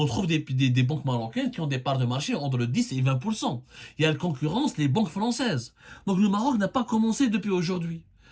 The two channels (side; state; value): both; identical; correlation 1.00